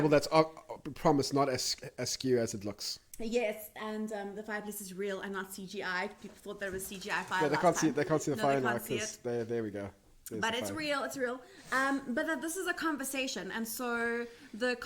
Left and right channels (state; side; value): identical; both; correlation 1.00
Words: that's promised not as askew as it looks. Yes, and the fireplace is real and not CGI. People thought there was CGI fire. Yeah, they can't see the fire now can't see because there we go. There's but the it's fire. real, it's real. But this is a conversation, and so the